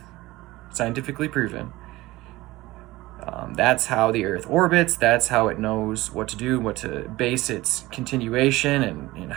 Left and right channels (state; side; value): quieter; left; 18.9 dB